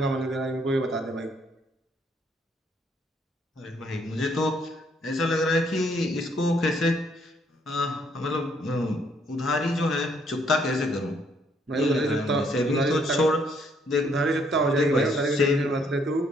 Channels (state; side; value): normal; both; correlation 0.68